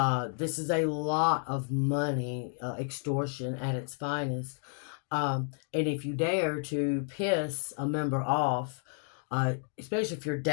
This is a lot of money, extortion at its finest. And if you dare to piss a member off, especially if you're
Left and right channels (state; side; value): silent; right; 57 dB below the other